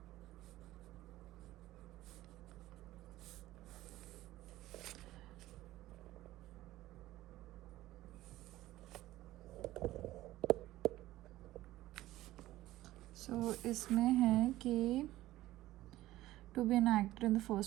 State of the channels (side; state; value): left; quieter; 16.0 dB